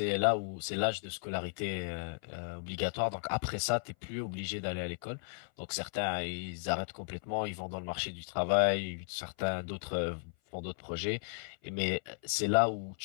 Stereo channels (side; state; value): right; silent; 54 dB below the other